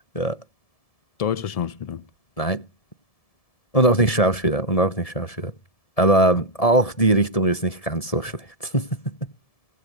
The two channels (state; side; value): late; right; 1.7 ms